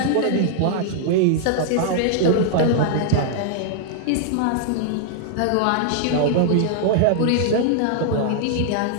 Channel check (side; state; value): both; different; correlation -0.01